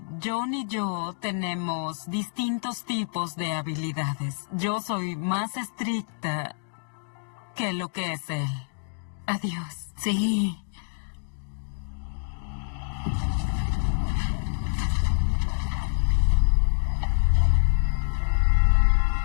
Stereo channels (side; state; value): right; silent; digital silence